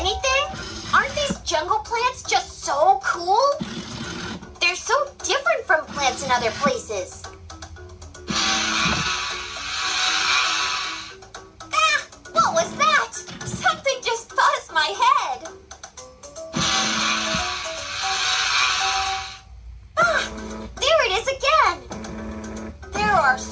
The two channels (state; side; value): identical; both; correlation 1.00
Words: Aren't these jungle plants just so cool? They're so different from plants in other places. What was that? Something just buzzed my head. There it is again. There are